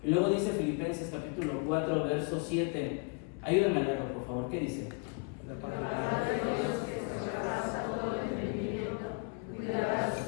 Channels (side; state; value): right; quieter; 34.7 dB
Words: Y luego dice Filipenses capítulo 4, verso 7. Ayúdame a leerlo, por favor. ¿Qué dice?